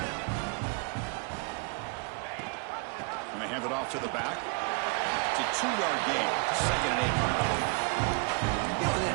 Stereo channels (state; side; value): quieter; left; 32.8 dB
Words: And they hand it off to the back. It's a 2-yard gain. Second and 8 coming up. You know, in